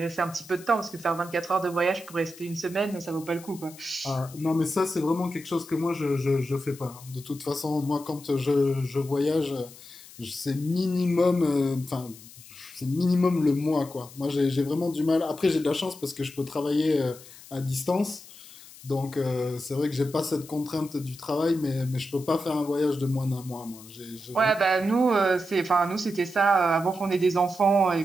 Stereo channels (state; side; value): noise; left; hiss, 19 dB below the sound